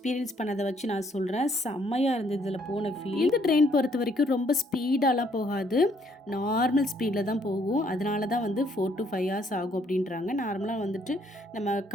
பண்ணதை வச்சு நான் சொல்கிறேன். செம்மையாக இருந்தது இதில் போன ஃபீல். இந்த ட்ரெயின் பொறுத்த வரைக்கும் ரொம்ப ஸ்பீடாலாம் போகாது. நார்மல் ஸ்பீடில் தான் போகும். அதனால தான் வந்து 4 to 5 hours ஆகும் அப்படின்றாங்க. நார்மலாக வந்துட்டு நம்ம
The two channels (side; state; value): both; normal; correlation 0.67